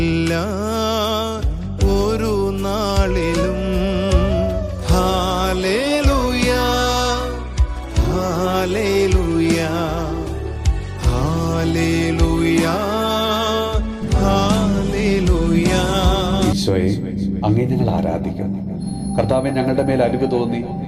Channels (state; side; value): identical; both; correlation 1.00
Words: ഒരു നാളിലും. Hallelujah, hallelujah, hallelujah, hallelujah. ഈശോയെ, അങ്ങേ ഞങ്ങൾ ആരാധിക്കുന്നു. കർത്താവെ, ഞങ്ങളുടെ മേൽ അലിവ് തോന്നി